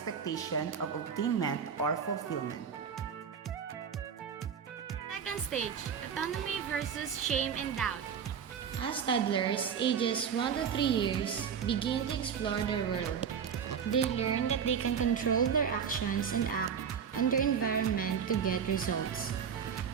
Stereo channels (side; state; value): left; quieter; 7.3 dB